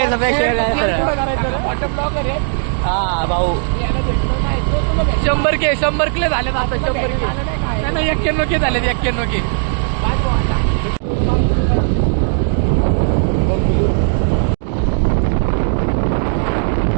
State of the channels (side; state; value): left; silent; digital silence